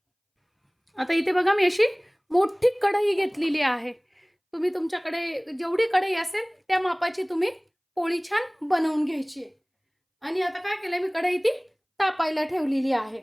आता इथे बघा, मी अशी मोठी कढई घेतलेली आहे. तुम्ही तुमच्याकडे जेवढी कढई असेल त्या मापाची तुम्ही पोळी छान बनवून घ्यायची आहे. आणि आता काय केलंय, मी कढई ती तापायला ठेवलेली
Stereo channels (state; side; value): identical; both; correlation 1.00